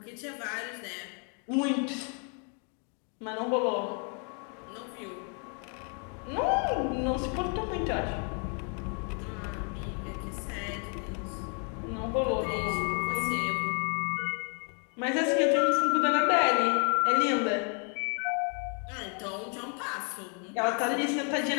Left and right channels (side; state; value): right; quieter; 39.9 dB